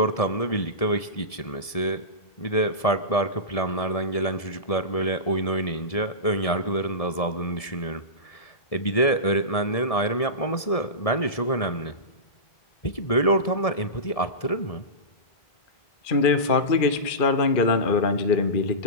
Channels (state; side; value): late; right; 1.7 ms